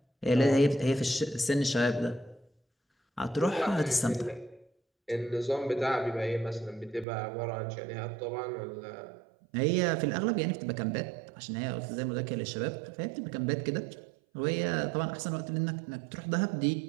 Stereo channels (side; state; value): left; drops out; at 7.1 s